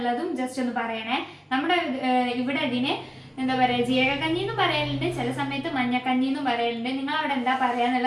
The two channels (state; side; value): identical; both; correlation 1.00